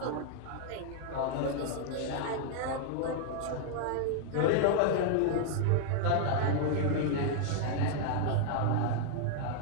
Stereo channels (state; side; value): different; both; correlation 0.00